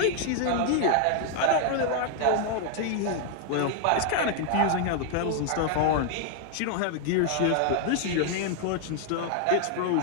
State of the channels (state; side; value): different; both; correlation 0.00